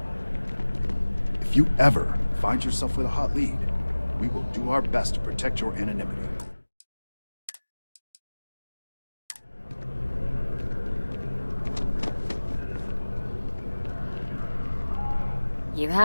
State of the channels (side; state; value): both; inverted; correlation -1.00